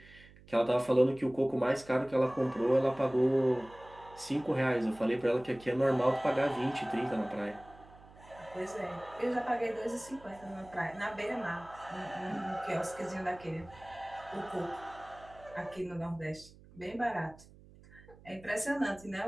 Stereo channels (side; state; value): right; noise; hum, 22 dB below the sound